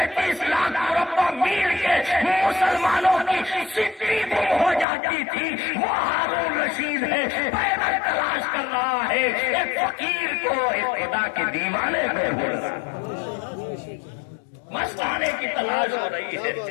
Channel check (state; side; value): drops out; right; at 4.9 s